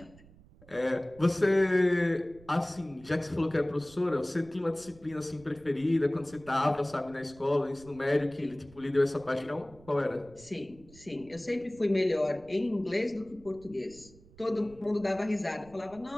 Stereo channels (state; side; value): noise; right; rumble, 23 dB below the sound